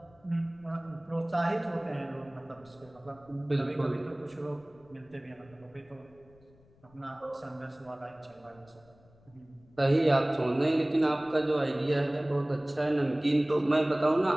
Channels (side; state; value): left; noise; rumble, 29 dB below the sound